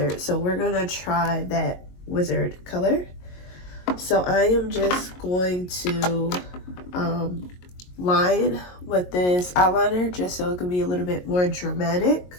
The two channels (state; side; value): late; right; 22 ms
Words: so we're gonna try that wizard color. So I am just going to line with this eyeliner just so it can be a little bit more dramatic.